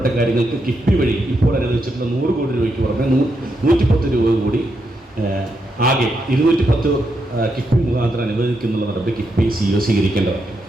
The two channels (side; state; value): both; normal; correlation 0.82